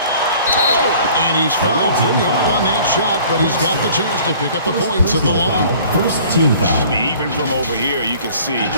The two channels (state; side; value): inverted; both; correlation -0.50